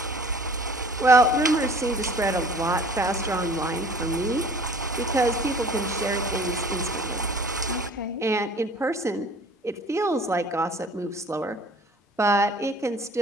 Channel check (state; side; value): normal; both; correlation 0.49